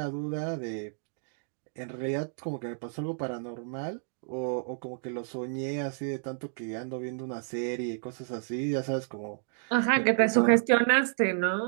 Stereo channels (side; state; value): left; silent; digital silence